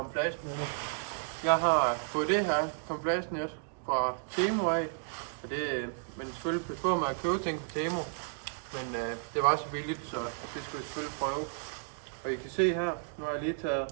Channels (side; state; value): left; silent; digital silence